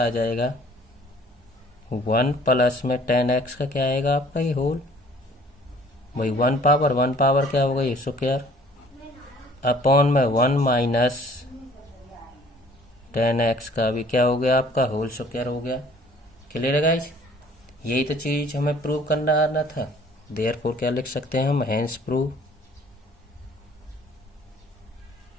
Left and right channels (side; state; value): both; normal; correlation 0.55